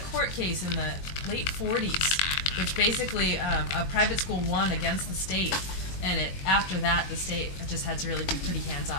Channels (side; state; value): right; late; 21 ms